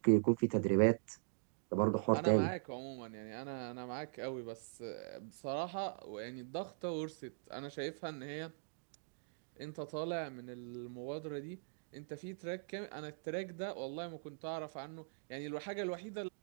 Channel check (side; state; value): left; silent; digital silence